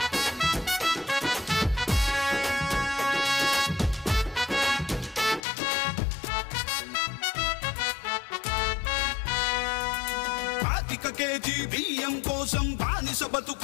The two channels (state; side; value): drops out; right; at 5.4 s